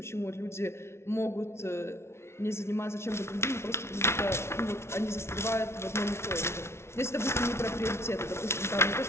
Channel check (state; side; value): late; right; 0.13 ms